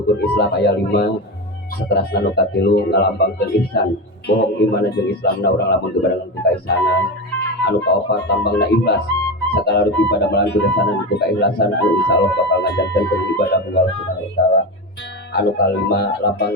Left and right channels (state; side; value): normal; both; correlation 0.21